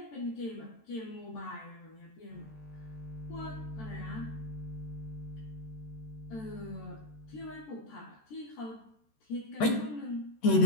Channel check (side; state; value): right; late; 14 ms